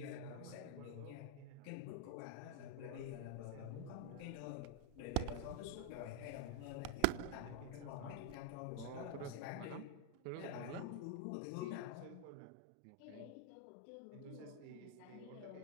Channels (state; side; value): different; both; correlation 0.00